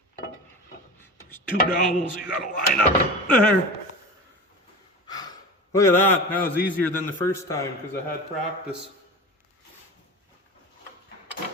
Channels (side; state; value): both; normal; correlation 0.31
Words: 2 dowels you gotta line up there. Look at that. That was easier than the first time because I had practice.